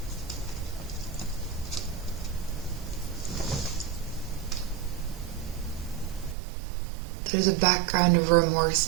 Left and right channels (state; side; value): drops out; left; at 6.4 s